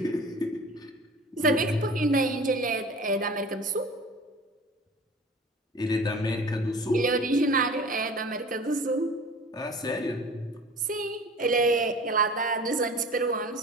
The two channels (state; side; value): normal; both; correlation 0.41